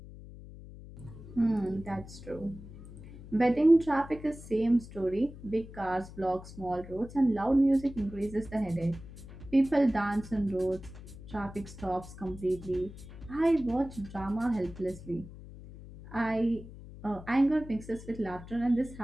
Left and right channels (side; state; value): left; noise; hum, 15 dB below the sound